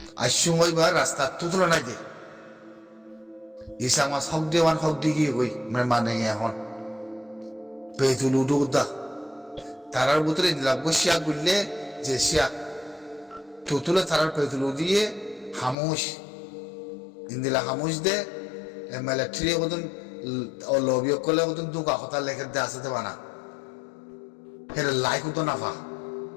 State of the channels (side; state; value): right; drops out; at 15.8 s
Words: আসুম ওইবার রাস্তা থুতলো নাই দে ইসামা হক দেওয়ান হক দিগি গই মানে এখন পেতুলু দুদা তারার ভিতরে লাগবো শিয়া গুললে যে শিয়া থুতুলে তারার পেতুলু দিয়ে হামুস ইন্দিলা হামুস দে মিলিটারি ওদন লবিও করলে ওদন দুকা কথা লেখে দে আসতে বানা হেরে লাইক তো নাফা